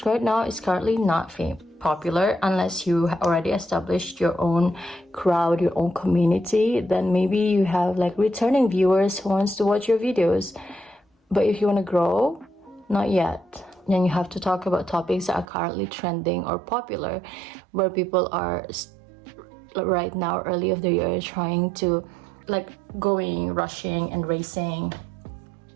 right now is currently not popular unless you already established your own crowd, your own community. Then maybe you have like returning viewers who wants to watch your videos. But if you want to grow, not yet. Then you have to talk about topics that are currently trending or popular, where people are right now, early of the year, trying to like rushing and racing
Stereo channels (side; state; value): left; drops out; at 15.5 s